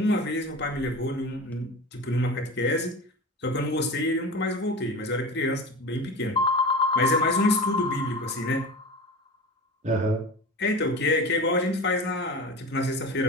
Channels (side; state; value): both; normal; correlation 0.31